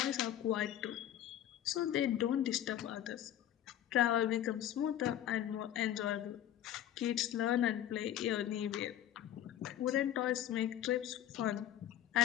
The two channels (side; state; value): right; quieter; 11.6 dB